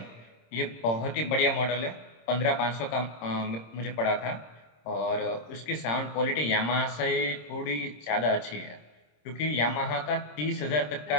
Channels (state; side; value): late; right; 26 ms